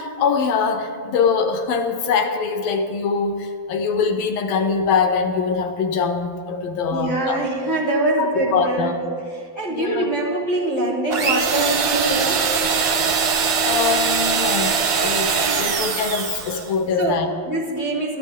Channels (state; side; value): late; right; 11 ms